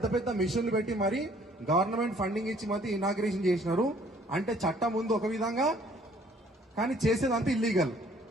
పెద్ద మిషన్లు పెట్టి మరి గవర్నమెంట్ ఫండింగ్ ఇచ్చి మరి ఇనాగ్రేషన్ చేసినారు. అంటే చట్టం ముందు ఒక విధంగా కానీ చేసేదంతా ఇల్లీగల్.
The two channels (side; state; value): both; normal; correlation 0.59